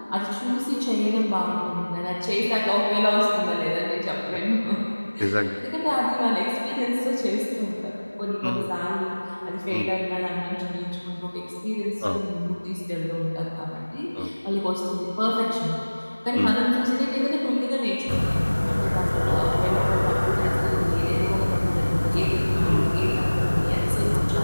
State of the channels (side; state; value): both; inverted; correlation -1.00